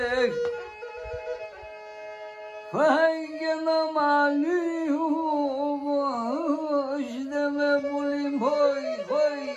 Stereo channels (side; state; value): both; identical; correlation 1.00